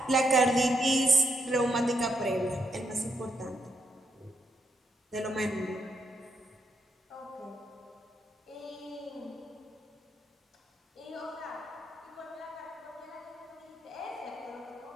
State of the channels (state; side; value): normal; both; correlation 0.80